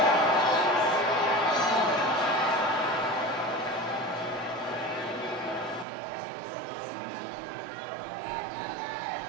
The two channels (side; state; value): left; drops out; at 5.9 s